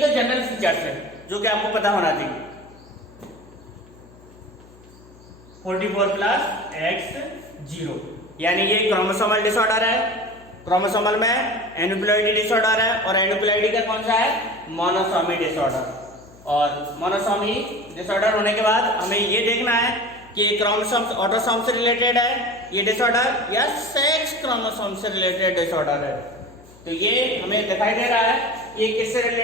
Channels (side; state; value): left; noise; hum, 24 dB below the sound